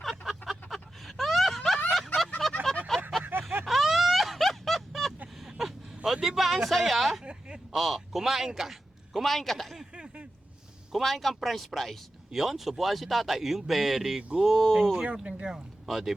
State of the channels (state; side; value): normal; both; correlation 0.92